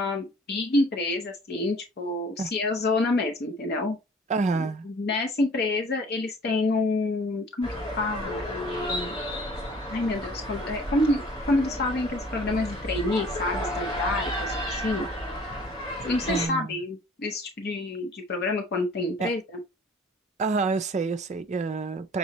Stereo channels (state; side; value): normal; both; correlation 0.51